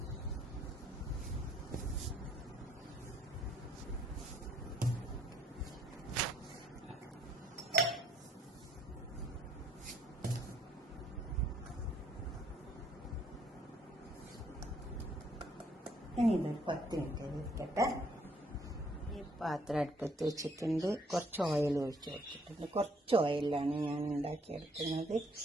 ഇനി ഇതൊരു 10 മിനിറ്റ് ഇരിക്കട്ടെ. ഈ പാത്രം അടുപ്പത്ത് വെച്ചിട്ടുണ്ട്. കുറച്ച് ഓയിൽ ഒഴിച്ച് വെച്ചിട്ടുണ്ട്. കുറച്ച് ഓയിലാണ് ഞാൻ ഉണ്ടാക്കിയെടുക്കുന്നത്.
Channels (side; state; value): both; normal; correlation 0.65